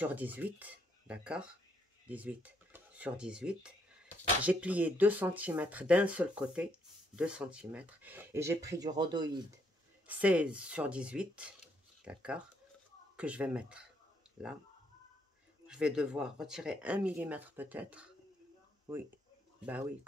18, d'accord? 18 sur 18. J'ai plié 2 cm d'un seul côté, 2 cm. Et j'ai pris du rhodoïde 16 sur 18, d'accord? Que je vais mettre là. Je vais devoir retirer 1 mm peut-être. Oui, bah oui,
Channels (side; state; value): both; normal; correlation 0.72